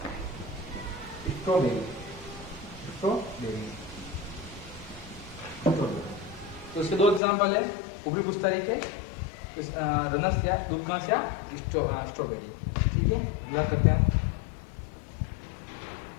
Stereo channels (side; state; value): right; drops out; at 7.2 s